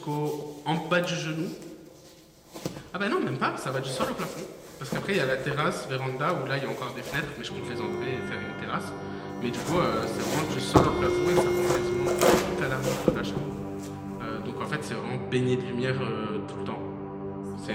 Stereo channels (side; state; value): both; identical; correlation 1.00